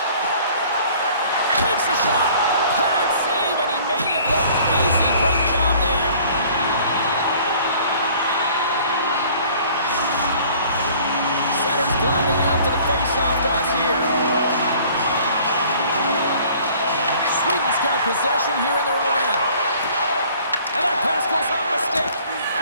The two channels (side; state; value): both; inverted; correlation -0.53